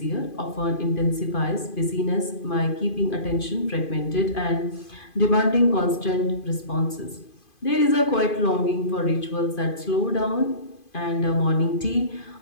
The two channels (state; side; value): late; right; 2.5 ms